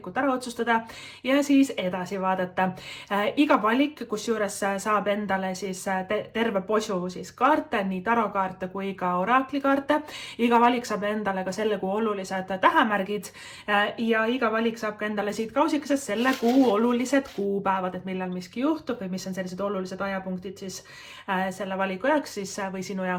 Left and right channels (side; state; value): both; identical; correlation 1.00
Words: ära otsustada ja siis edasi vaadata. Iga valik, kus juures saab endale siis terve posu siis kaarte, nii tarokaarte kui ka oraklikaarte. Iga valik saab endale ka selle kuu olulised tähemärgid ja iga valik saab ka endale siit kausikesest selle kuu olulised kuupäevad, et millal miski juhtub või mis on sellised olulised ajapunktid siis selle valiku jaoks siis, või sinu